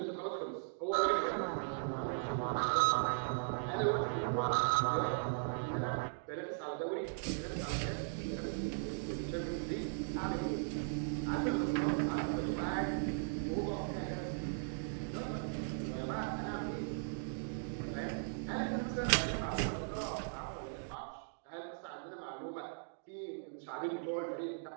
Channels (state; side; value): silent; left; digital silence